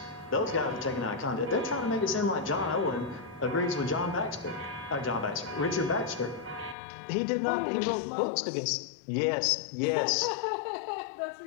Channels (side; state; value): right; drops out; at 6.8 s